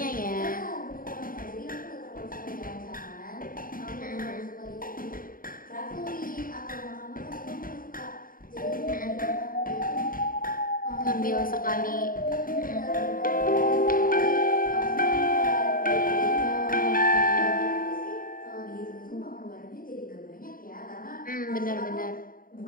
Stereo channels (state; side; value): late; right; 0.41 ms